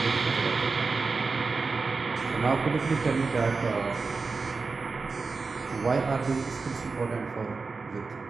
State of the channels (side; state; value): left; quieter; 4.3 dB